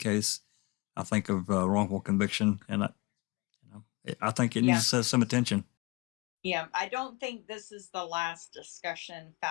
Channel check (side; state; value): right; quieter; 25.0 dB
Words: I think, of wrongful conviction, and I think it needs some attention. Yeah, I don't think this is the last discussion